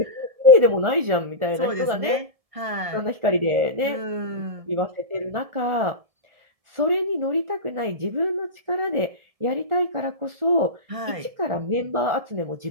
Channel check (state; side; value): late; left; 1.7 ms